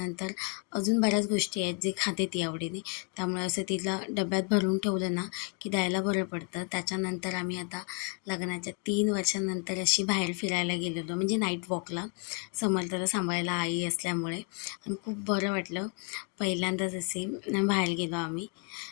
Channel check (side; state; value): right; quieter; 37.5 dB